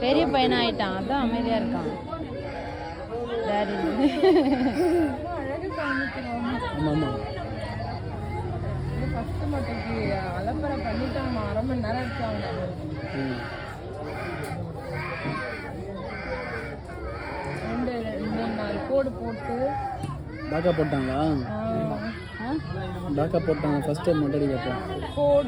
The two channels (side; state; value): both; identical; correlation 1.00